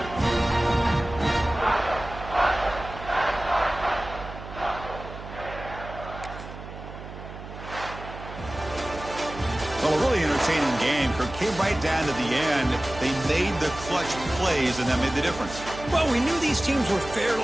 Well, a really entertaining game. Kirk came right down to the end. They made the clutch plays, and that made the difference. Well, we knew these teams were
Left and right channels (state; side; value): noise; right; hum, 12 dB below the sound